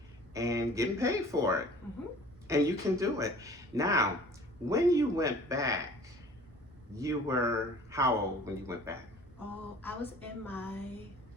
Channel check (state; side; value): normal; both; correlation 0.47